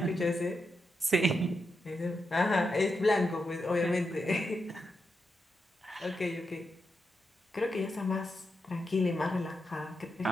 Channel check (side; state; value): both; normal; correlation 0.86